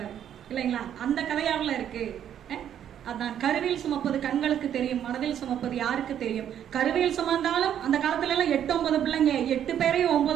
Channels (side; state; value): left; quieter; 9.9 dB